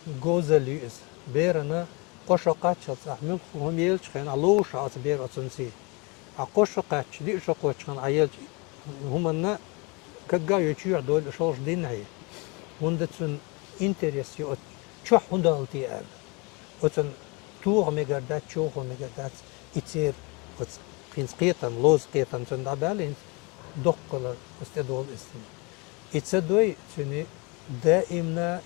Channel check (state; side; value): quieter; right; 29.2 dB